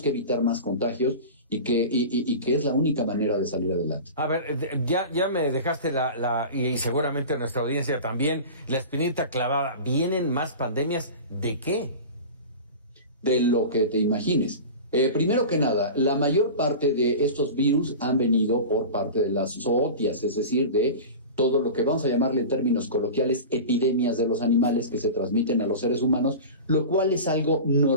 que evitar más contagios y que es la única manera de salir adelante. A ver, ya me dejaste y seguramente nuestra audiencia también, la espinita clavada. ¿Vienen más pandemias de qué? De lo que te imagines. Primero que nada, la mayor parte de estos virus han venido por parte de las zootias, es decir, de todo lo que vamos a llamarle en términos coloquiales epidemias de los animales que se transmiten a los seres humanos, lo cual es algo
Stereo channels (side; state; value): both; inverted; correlation -0.32